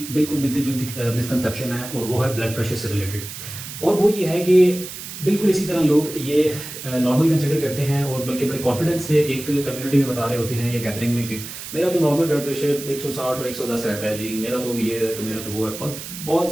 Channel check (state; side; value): noise; right; hiss, 10 dB below the sound